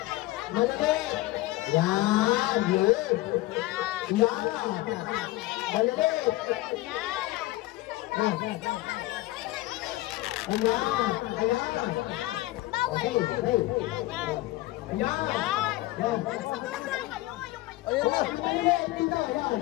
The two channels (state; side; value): quieter; right; 18.3 dB